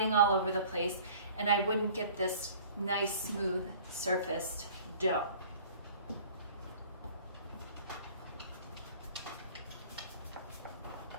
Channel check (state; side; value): inverted; both; correlation -0.48